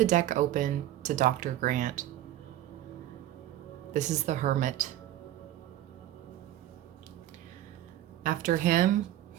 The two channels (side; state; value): left; quieter; 13.4 dB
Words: deck open to Dr. Grant. This is the Hermit. After him,